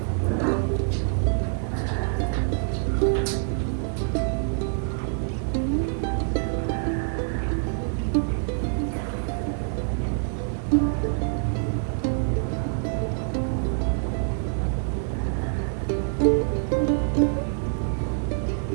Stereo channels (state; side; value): silent; left; 61 dB below the other